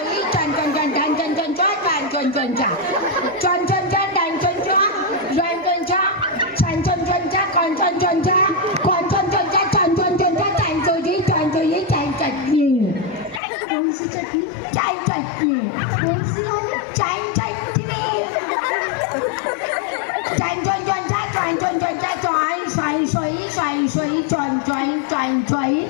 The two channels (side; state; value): right; drops out; at 13.4 s